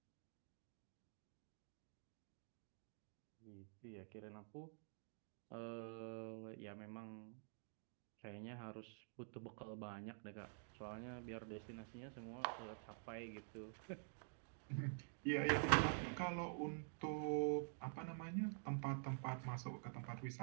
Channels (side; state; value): left; silent; digital silence